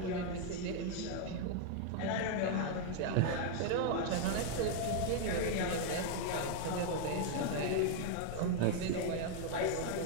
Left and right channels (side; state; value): both; different; correlation 0.00